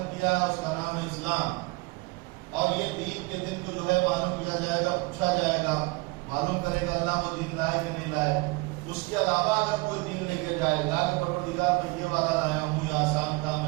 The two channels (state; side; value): quieter; left; 25.8 dB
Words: کیا ہے، اس کا نام ہے اسلام. اور یہ دین کے دن کو جو ہے معلوم کیا جائے گا، پوچھا جائے گا، معلوم کرے گا اللہ وہ دین لائے کہ نہیں لائے. اس کے علاوہ اگر کوئی دین لے کے جائے گا کہ پروردگار میں یہ والا لایا ہوں یہ آسان تھا،